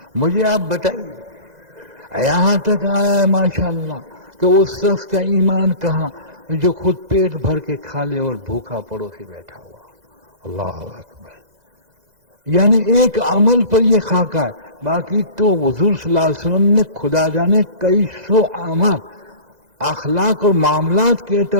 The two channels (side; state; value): left; late; 2.0 ms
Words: مجھے آپ بتائیے۔ یہاں تک آیا ہے ماشاءاللہ کہ اس شخص کا ایمان کہاں جو خود پیٹ بھر کے کھا لے اور بھوکا پڑوسی بیٹھا ہوا۔ اللہ اکبر، یعنی ایک عمل پر یہ خاکہ ہے، باقی تو حضور صلی اللہ علیہ وسلم نے خدا جانے کئی سو اعمال اخلاق اور معاملات کے